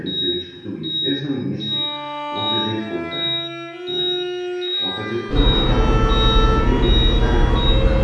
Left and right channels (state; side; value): identical; both; correlation 1.00